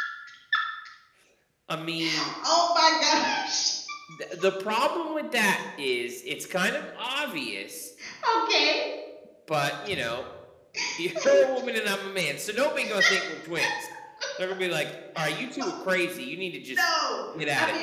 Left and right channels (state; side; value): identical; both; correlation 1.00